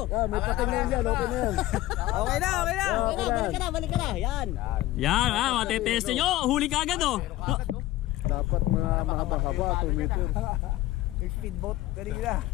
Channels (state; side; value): quieter; right; 16.1 dB